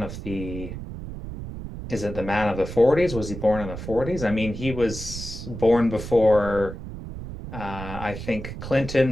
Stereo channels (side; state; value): right; noise; rumble, 9 dB below the sound